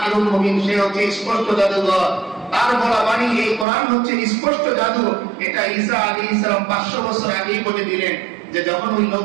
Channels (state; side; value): drops out; left; at 3.7 s